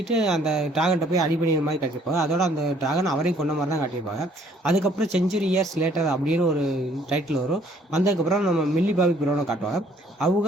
அந்த ட்ராகன்கிட்ட போய் அடி பண்ணிடுற மாதிரி காட்டியிருப்பாங்க. அதோட அந்த ட்ராகன் அவரையும் கொண்ட மாதிரி தான் காட்டியிருப்பாங்க. அதுக்கப்புறம் செஞ்சுரி இயர்ஸ் லேட்டர் அப்படின்னு ஒரு டைட்டில் வரும். வந்ததுக்கப்புறம் நம்ம மில்லி பாபி ப்ரௌனை காட்டுவாங்க. அவங்க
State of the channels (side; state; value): both; normal; correlation 0.62